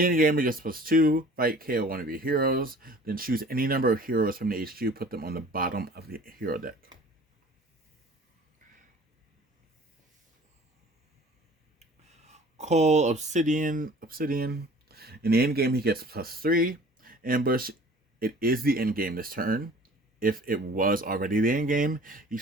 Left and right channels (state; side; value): normal; both; correlation 0.48